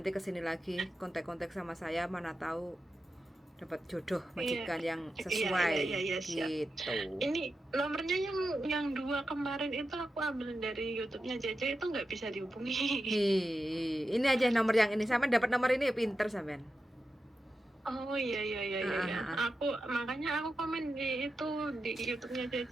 kesini lagi kontak-kontak sama saya, mana tahu dapat jodoh majikan yang sesuai siap. gitu. Ini nomornya yang 2 kemarin itu aku ambil dari YouTube-nya Jaja, itu nggak bisa dihubungi. Ini aja nomor yang ini. Sampean dapat nomor ini pinter sampean. Oh iya. Makanya aku komen di itu di YouTube-nya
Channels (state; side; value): normal; both; correlation 0.90